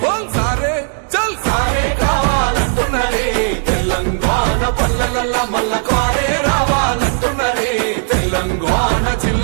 బోల్ సారే చల్ సారే కావాలంటున్నదే తెలంగాణ పల్లెలల్లా.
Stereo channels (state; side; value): silent; left; 58 dB below the other